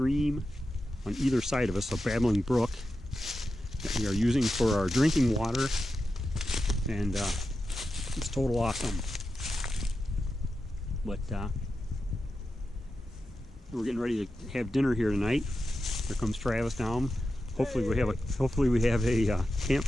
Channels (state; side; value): normal; both; correlation 0.90